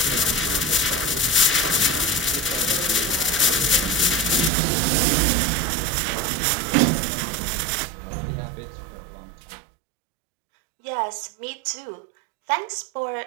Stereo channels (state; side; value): drops out; left; at 4.5 s